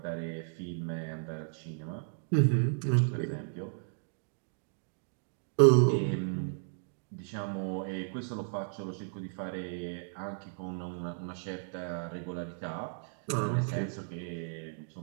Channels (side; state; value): left; silent; digital silence